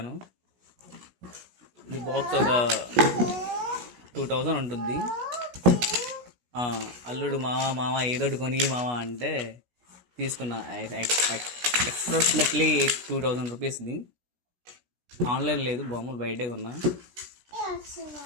ఇది బాక్స్ ఒక 2000 ఉంటుంది. అల్లుడు మామ ఏదోటి కొని మామ అంటే తీసుకున్నా. అప్రాక్సిమేట్లీ 2000 రూపీస్ది. ఆన్లైన్ లేదు, బొమ్మలు బయటే కొన్నా.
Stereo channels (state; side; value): late; left; 16 ms